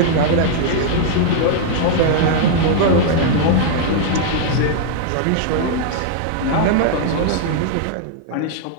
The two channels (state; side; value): different; both; correlation -0.01